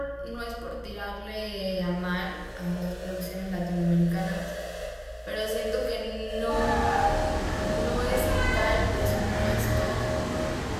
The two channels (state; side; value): identical; both; correlation 1.00